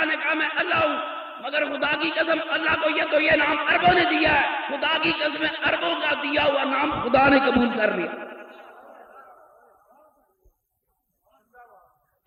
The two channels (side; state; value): both; identical; correlation 1.00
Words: نے کہا میں اللہ ہوں، مگر خدا کی قسم اللہ کو یہ نام عربوں نے دیا ہے، خدا کی قسم عربوں کا دیا ہوا نام خدا نے قبول کر لیا۔